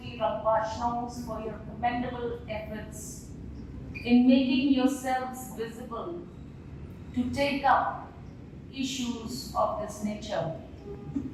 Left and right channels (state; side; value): identical; both; correlation 1.00